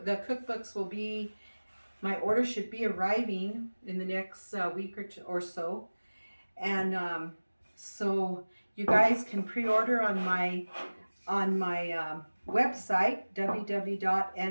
The cookbooks will be, my order should be arriving in the next week or so. And so you guys can pre-order on my website,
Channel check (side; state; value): both; inverted; correlation -1.00